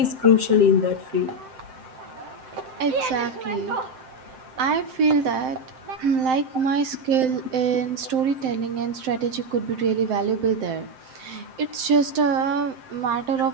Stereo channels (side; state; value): left; late; 7.7 ms